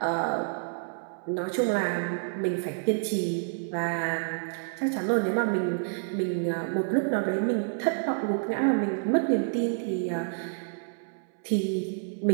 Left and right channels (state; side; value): silent; left; 59 dB below the other